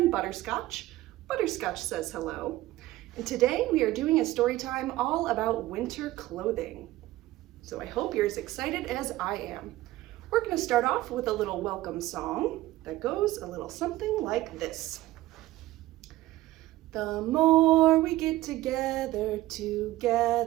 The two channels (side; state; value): left; quieter; 16.8 dB